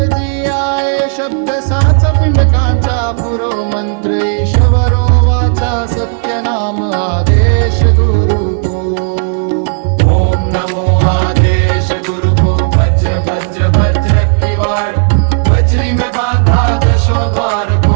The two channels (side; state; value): left; silent; 65 dB below the other